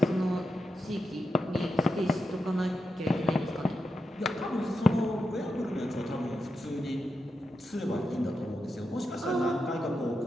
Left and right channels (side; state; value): both; normal; correlation 0.87